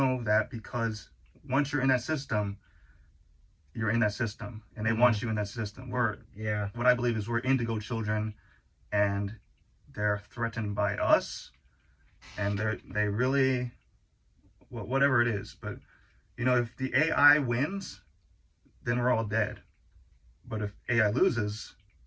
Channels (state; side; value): identical; both; correlation 1.00